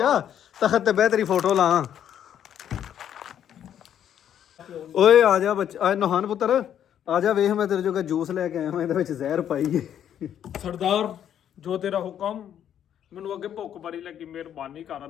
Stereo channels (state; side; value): quieter; right; 9.8 dB